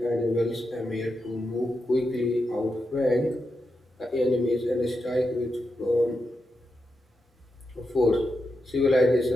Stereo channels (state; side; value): normal; both; correlation 0.87